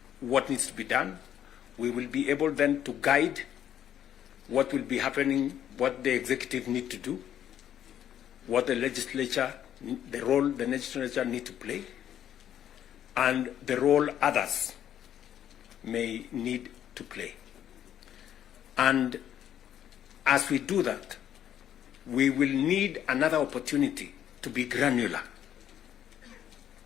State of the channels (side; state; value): right; quieter; 10.4 dB